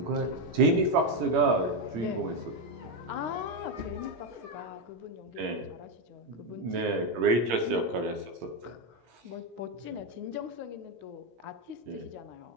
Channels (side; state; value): left; late; 17 ms